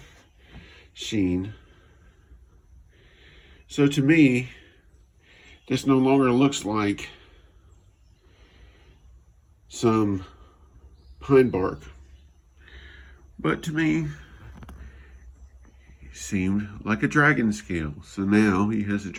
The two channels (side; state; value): both; identical; correlation 1.00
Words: sheen. So to me, this no longer looks like some pine bark, but to me, it seemed like a dragon scale. So now he has a